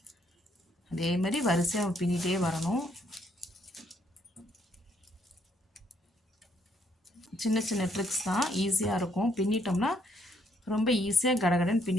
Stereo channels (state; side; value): normal; both; correlation 0.70